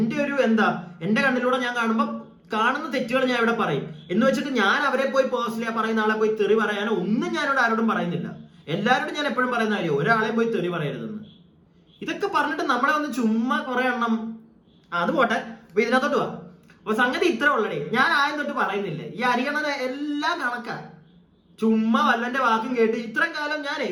ഒരു എന്റെ കണ്ണിലൂടെ ഞാൻ കാണുമ്പോൾ കാണുന്ന തെറ്റുകൾ ഞാൻ ഇവിടെ പറയും എന്ന് വെച്ചിട്ട് ഞാൻ അവരെ പോയി പേഴ്സണലി പറയുന്ന ആളെ പോയി തെറി പറയാനോ ഒന്നും ഞാനിവിടെ ആരോടും പറയുന്നില്ല. എല്ലാവരോടും ഞാൻ എപ്പോഴും പറയുന്ന കാര്യം ഒരാളെയും പോയി തെറി പറയരുതെന്ന്. ഇതൊക്കെ പറഞ്ഞിട്ട് നമ്മളെ ഒന്ന് ചുമ്മാ കുറെ എണ്ണം അത് പോട്ടെ. അപ്പൊ ഇതിനകത്തോട്ട് പോവാ. അപ്പൊ സംഗതി ഇത്ര ഉള്ളടേ. ഞാൻ ആദ്യം തൊട്ട് പറയുന്നില്ലേ, ഈ അരിയണനെ എല്ലാം കണക്കാ. ചുമ്മാ വല്ലന്റെ വാക്കും കേട്ട് ഇത്രയും കാലം ഞാനേ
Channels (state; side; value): identical; both; correlation 1.00